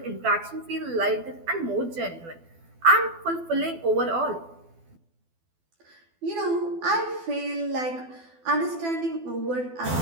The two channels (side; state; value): left; late; 12 ms